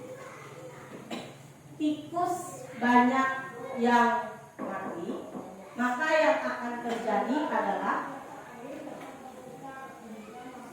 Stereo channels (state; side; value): identical; both; correlation 1.00